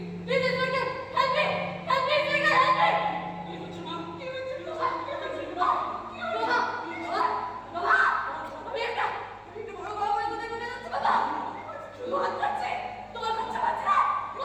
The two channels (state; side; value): identical; both; correlation 1.00